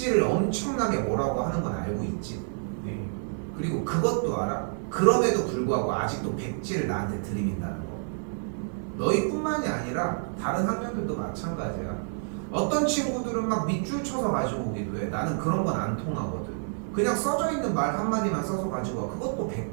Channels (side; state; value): left; silent; 58 dB below the other